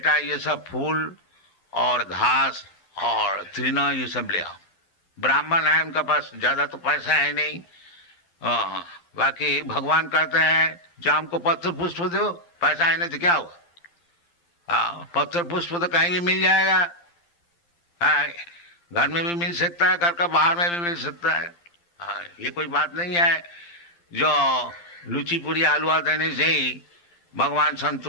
ये सब फूल और घास और तृण ये सब ले आओ। ब्राह्मण है, उनका पास ज्यादा तो पैसा है नहीं, बाकी भगवान कहते हैं जो हमको पत्र पुष्प दो, पैसा है नहीं तो क्या हुआ, पत्र पुष्प तो कहीं भी मिल जाएगा, घर में भी मिल सकता है, घर का बाहर में भी मिल सकता है। ये कोई बात नहीं है जो लुची पूरी हलवा देने से ही भगवान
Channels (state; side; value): late; right; 12 ms